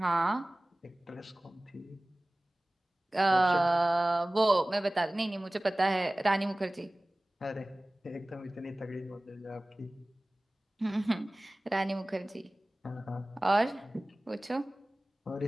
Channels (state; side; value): normal; both; correlation 0.98